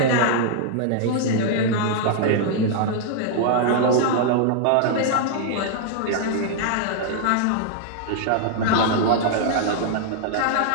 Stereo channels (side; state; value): both; different; correlation -0.01